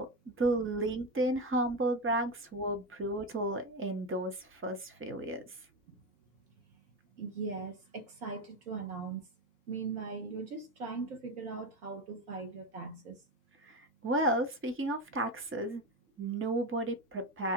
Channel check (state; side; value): normal; both; correlation 0.17